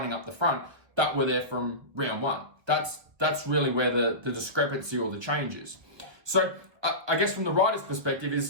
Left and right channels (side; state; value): left; late; 1.4 ms